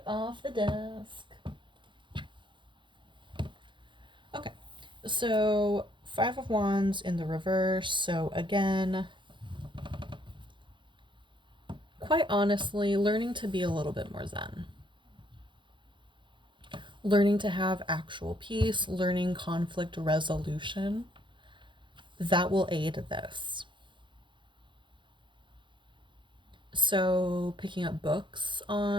off the desk. Okay, so 5 of Wands in the reverse. So again, quite honestly, learning to be a little bit more zen. Learning to have actual peace, learning conflict resolution, that will aid this. So, picking up books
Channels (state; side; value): late; left; 0.23 ms